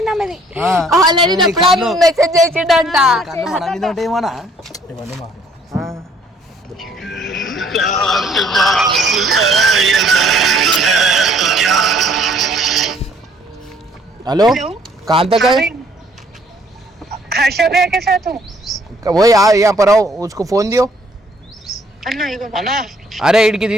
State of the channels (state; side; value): normal; both; correlation 0.61